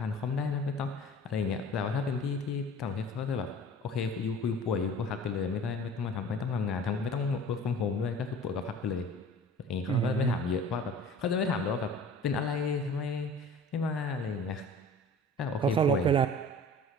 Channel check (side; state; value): both; normal; correlation 0.43